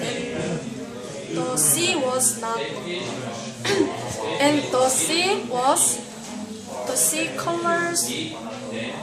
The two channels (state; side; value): identical; both; correlation 1.00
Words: the sea was not, and the sea colors